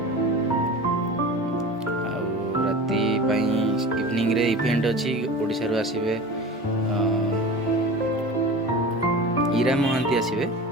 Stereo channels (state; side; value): normal; both; correlation 0.34